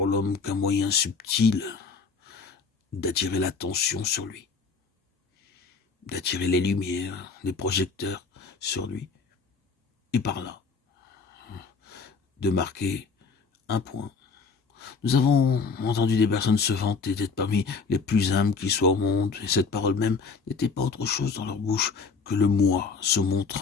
l'homme qu'un moyen subtil d'attirer l'attention sur lui, d'attirer les lumières, les projecteurs sur lui, et par là, de marquer un point. Nous avons entendu des personnes se vanter d'être parmi les plus humbles qui soient au monde, et cette parole même n'était pas autre chose dans leur bouche que le moi se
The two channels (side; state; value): right; quieter; 4.9 dB